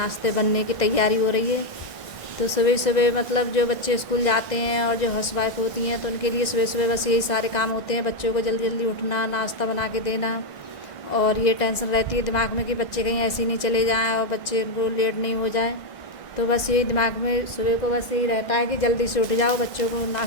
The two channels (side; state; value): right; late; 1.6 ms